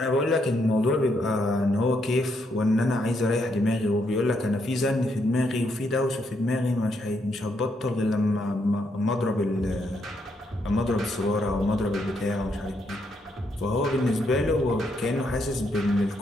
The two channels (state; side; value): normal; both; correlation 0.77